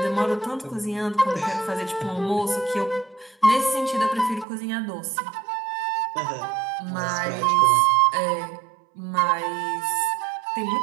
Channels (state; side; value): drops out; left; at 4.5 s